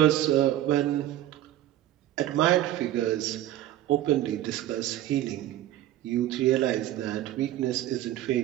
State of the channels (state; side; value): quieter; left; 13.3 dB